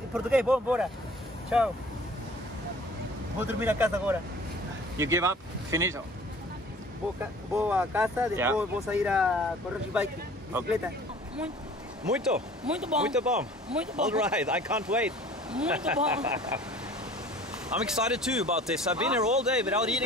português, vou embora. Tchau. Vou dormir na casa agora. You give up? Finito. Vou à casa, depois Yeah. vou sair a correr de bike, bicicleta. Muito. Muito bom. Muito bom. Muito bom. All right, I can't wait. Muito bom. I'm excited too about this. I've been here all day without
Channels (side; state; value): both; normal; correlation 0.48